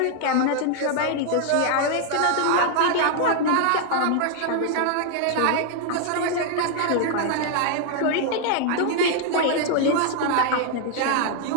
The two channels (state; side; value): different; both; correlation 0.00